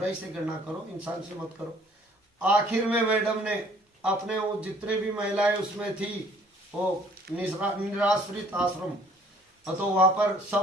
से घृणा करो, इंसान से मत करो। आखिर में मैडम ने अपने वो जितने भी महिलाएं उसमें थी, वो निराश्रित आश्रम, तो वहां पर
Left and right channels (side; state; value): both; normal; correlation 0.57